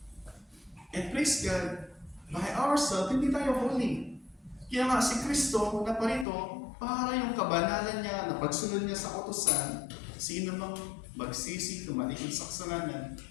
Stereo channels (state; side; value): drops out; right; at 6.2 s